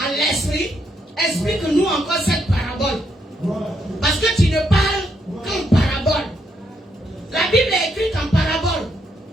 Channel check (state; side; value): normal; both; correlation 0.76